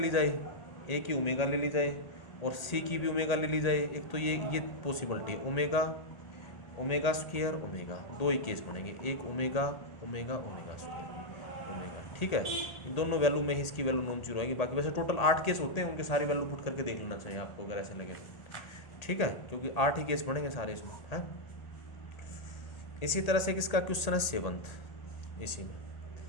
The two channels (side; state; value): right; late; 1.8 ms